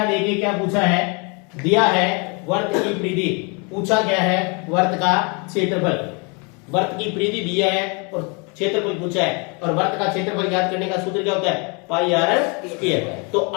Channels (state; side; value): quieter; right; 32.5 dB